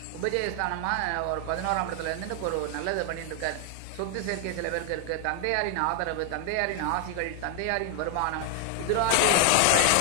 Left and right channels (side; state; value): both; different; correlation 0.00